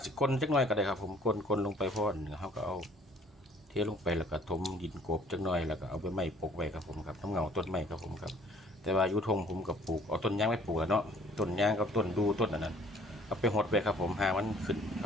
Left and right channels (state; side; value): normal; both; correlation 0.57